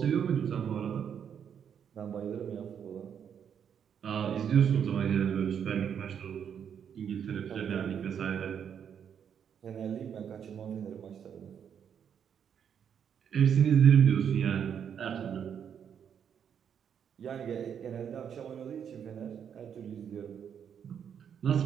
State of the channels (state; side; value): quieter; left; 8.1 dB